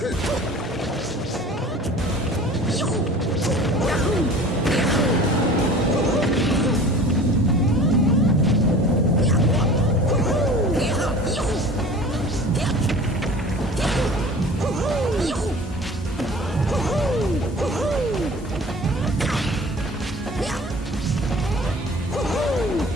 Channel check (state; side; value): normal; both; correlation 0.43